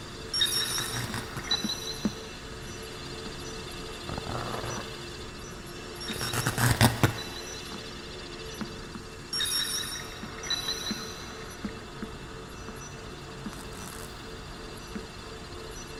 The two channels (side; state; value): both; identical; correlation 1.00